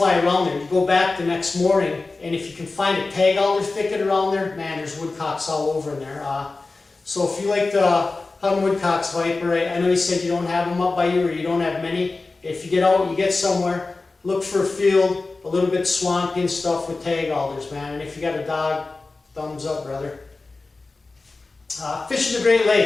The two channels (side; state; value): right; quieter; 3.6 dB